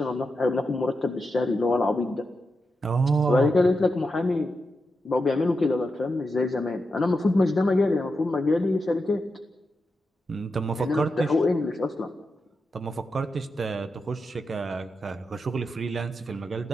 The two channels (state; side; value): normal; both; correlation 0.87